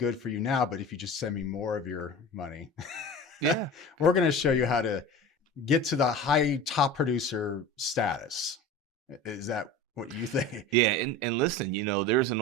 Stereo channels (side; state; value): both; normal; correlation 0.34